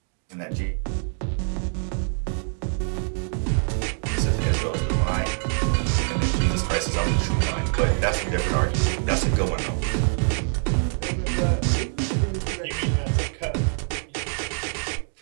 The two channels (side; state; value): left; silent; 57 dB below the other